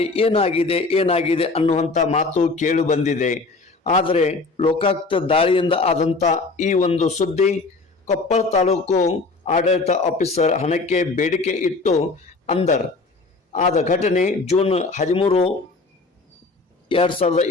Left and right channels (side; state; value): right; quieter; 3.7 dB